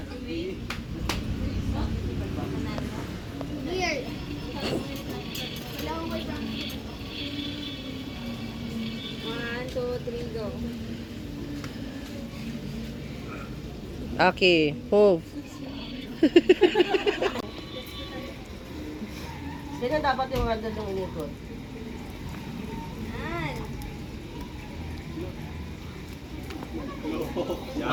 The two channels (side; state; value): both; identical; correlation 1.00